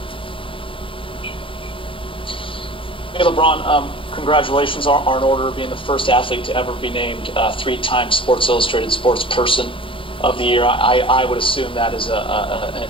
Hey, LeBron, congratulations are in order of being the first athlete to ever be named 3-time Sports Illustrated Sports Person of the Year. I would assume that is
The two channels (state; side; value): late; right; 0.25 ms